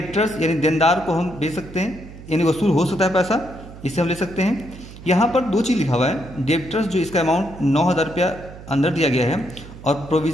यानी देनदार को हम बेच सकते हैं, यानी वसूल हो सकता है पैसा, इसे हम ले सकते हैं। यहाँ पर 2 चीज़ लिखा हुआ है, डेब्टर्स जो इसका अमाउंट 9,000 रुपया अंदर दिया गया है और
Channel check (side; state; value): right; noise; hum, 16 dB below the sound